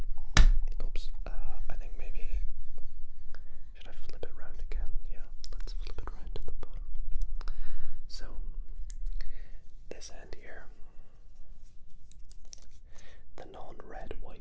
Oops, I think maybe, should I flip it round again? Yeah, let's flip it round to the bottom. So this end here, the non-red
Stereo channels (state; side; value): identical; both; correlation 1.00